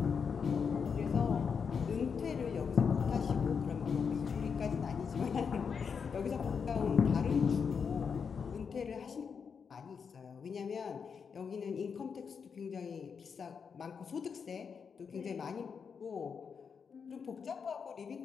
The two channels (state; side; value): quieter; right; 6.2 dB